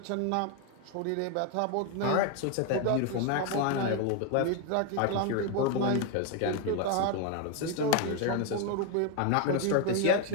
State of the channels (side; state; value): both; different; correlation 0.01